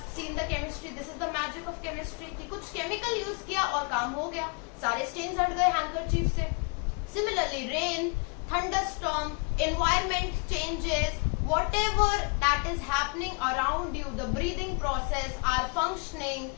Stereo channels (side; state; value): right; quieter; 35.4 dB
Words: seen the chemistry. This is the magic of chemistry कि कुछ केमिकल यूज किया और काम हो गया, सारे स्टेन्स हट गए हैंकरचीफ से. Similarly rain, thunderstorm, environment changes, whatever that is happening around you, the breathing process, our functioning,